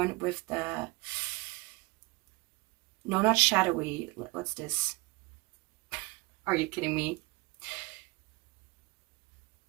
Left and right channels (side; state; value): left; quieter; 25.0 dB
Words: with the, no, not shadowy, what's this? Are you kidding me?